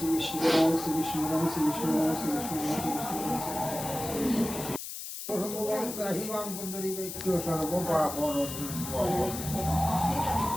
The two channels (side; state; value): left; noise; hiss, 8 dB below the sound